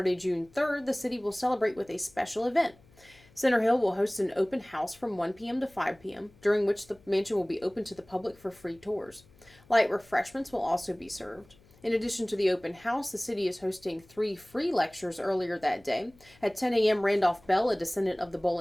June 3rd, the city will celebrate with a special event. Center Hill will host an open house from 1 p.m. to 5 p.m., during which the mansion will be open to the public for free tours. Light refreshments will also be served. In addition to the open house, the city is hosting 3 free lectures earlier that day. At 10 a.m., Randolph Bell, a descendant of the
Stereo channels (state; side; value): noise; left; hum, 28 dB below the sound